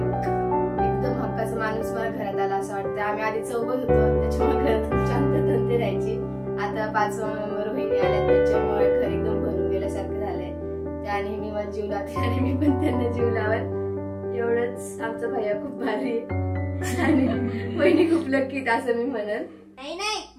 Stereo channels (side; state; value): both; identical; correlation 1.00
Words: एकदम हक्काचा माणूस मला घरात आला असं वाटतं। आम्ही आधी चौघ होतो, त्याच्यामुळे घरात खूप शांतता राहायची। आता 5वा मेंबर बहिणी आल्या, त्याच्यामुळे घर एकदम भरून गेल्यासारखं झालंय। त्या नेहमी मला जीव लावते आणि मी पण त्यांना जीव लावत। एवढंच आमचा भैया खूप भारी आणि बहिणी खूप लक्की असं मी म्हणेन। नाही